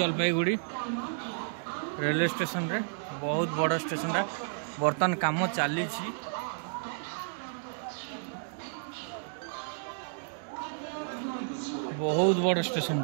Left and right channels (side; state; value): left; silent; digital silence